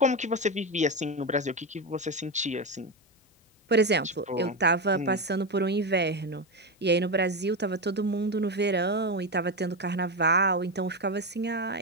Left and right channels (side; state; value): both; normal; correlation 0.13